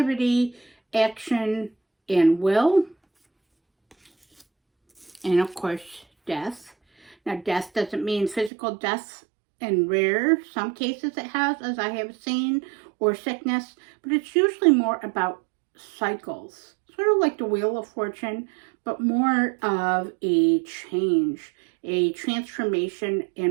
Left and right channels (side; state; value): left; drops out; at 8.5 s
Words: action, and will. And of course, death. Now, death doesn't mean physical death. In some cases it has, as I have seen, or sickness, but it's usually more about cycles, sort of like the Wheel of Fortune, but more of a change, a transformation